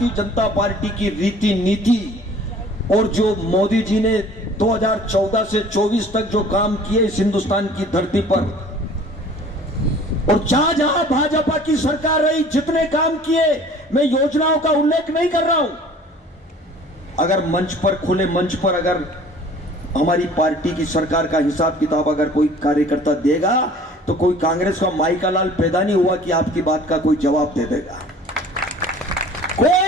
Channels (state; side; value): normal; both; correlation 0.49